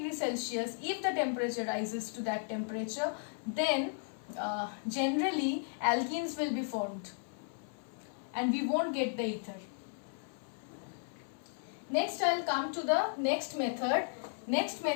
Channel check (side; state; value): right; silent; 54 dB below the other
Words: Celsius, if the temperature rises to that temperature, then generally alkenes will be formed and we won't get the ether. Next I will come to the next method. Next